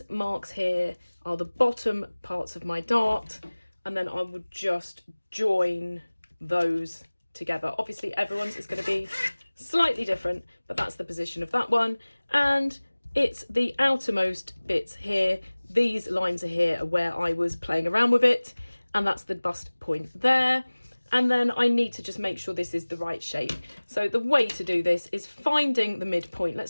marks here are the bottom parts of my dart, and then I would just join those together. Obviously everyone's is going to be slightly different, but that's the position of that one. And it's the outermost bits here, these lines are here are where I was playing around with it, and that's the bust point there. And then I need to just make sure this is the right shape. So the way to do this is finding the midpoint.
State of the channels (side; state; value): both; inverted; correlation -1.00